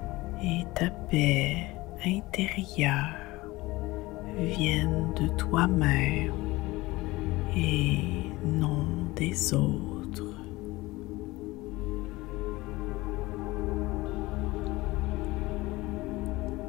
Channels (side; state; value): right; quieter; 20.4 dB